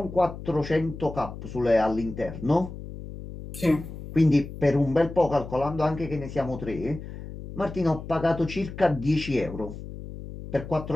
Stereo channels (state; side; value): noise; left; hum, 11 dB below the sound